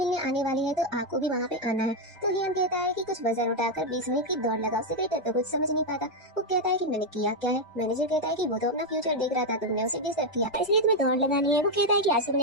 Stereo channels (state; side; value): normal; both; correlation 0.03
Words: आने वाली है, तो आपको भी वहाँ पे आना है। तो हियन कहता है कि कुछ वजन उठाकर 20 मिनट की दौड़ लगाओ। सेक्रेटरी तो कुछ समझ नहीं पाता। वो कहता है कि मैंने किया क्या है? मैनेजर कहता है कि वो तो अपना फ्यूचर देख रहा था, तुमने उसे डिस्टर्ब किया, इसलिए तुम्हें दौड़ लगानी है। वो कहता है कि आज